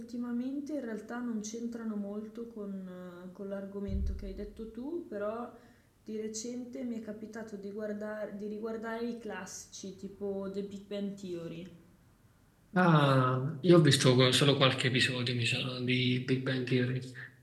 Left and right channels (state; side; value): identical; both; correlation 1.00